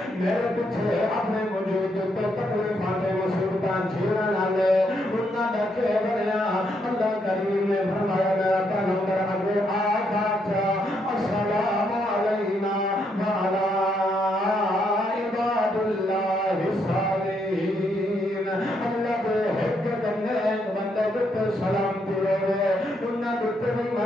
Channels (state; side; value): normal; both; correlation 0.76